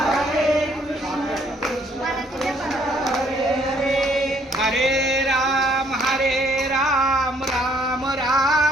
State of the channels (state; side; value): normal; both; correlation 0.65